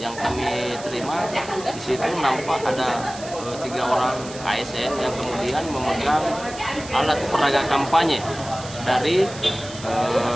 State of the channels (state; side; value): noise; right; hiss, 14 dB below the sound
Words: yang kami terima di situ nampak ada 3 orang ASN yang kemudian memegang alat peraga kampanye dari